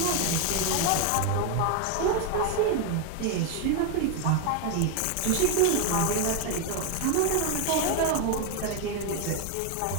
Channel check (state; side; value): different; both; correlation 0.01